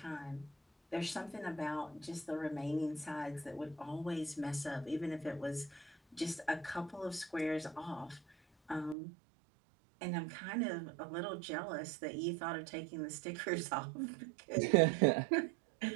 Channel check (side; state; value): left; drops out; at 9.0 s